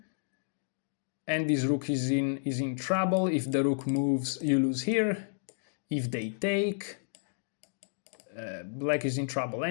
and this rook is in trouble. If the rook moves, you lose here. If they take, black is in trouble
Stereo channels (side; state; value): right; silent; digital silence